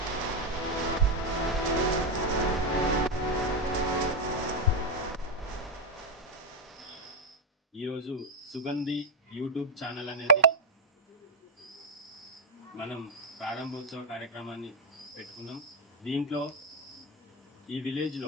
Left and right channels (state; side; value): normal; both; correlation 0.04